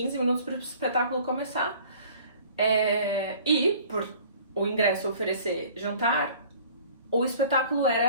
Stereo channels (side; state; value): both; inverted; correlation -0.50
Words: minutos para o espetáculo começar. E, por o ingresso oferecer jantar, o espetáculo era